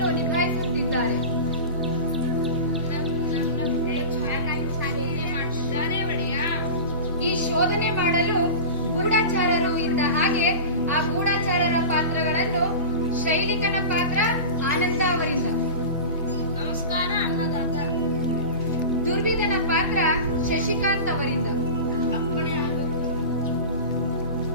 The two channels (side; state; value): both; inverted; correlation -0.31